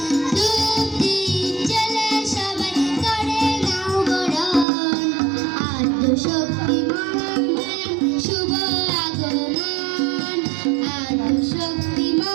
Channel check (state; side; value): drops out; left; at 4.7 s